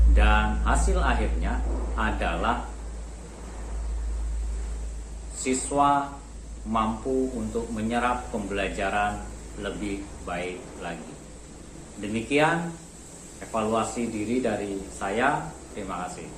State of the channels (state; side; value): identical; both; correlation 1.00